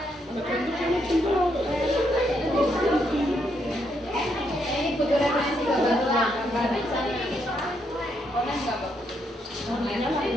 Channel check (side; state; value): both; normal; correlation 0.77